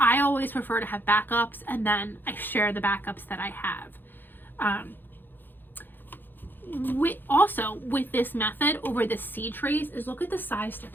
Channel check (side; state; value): right; late; 0.094 ms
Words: always prefer to have backups, and then I share the backups that I have. With this method over the seed trays is look at the size